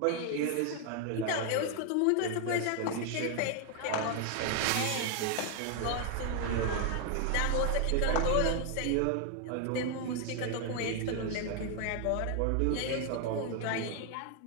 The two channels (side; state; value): both; different; correlation 0.00